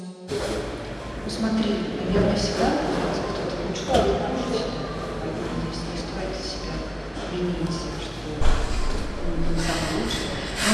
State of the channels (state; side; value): identical; both; correlation 1.00